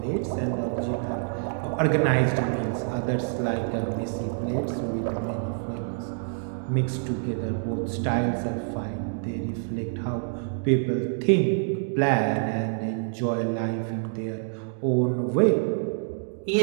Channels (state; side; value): silent; left; digital silence